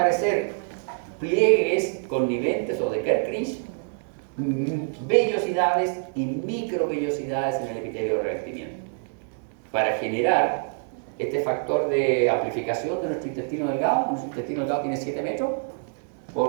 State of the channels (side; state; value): left; silent; 60 dB below the other